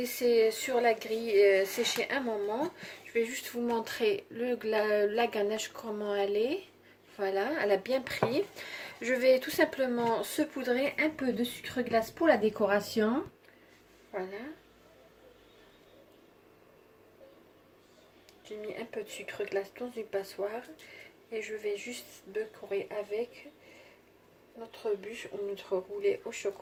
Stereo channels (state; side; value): identical; both; correlation 1.00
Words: sur la grille sécher un moment. Je vais juste vous montrer la ganache, comment elle est. Voilà, elle a bien pris. Je vais tout simplement saupoudrer un peu de sucre glace pour la décoration. Voilà. J'ai mis un peu de sucre glace dans une passoire. Et je vais juste décorer avec notre bûche ou notre roulé au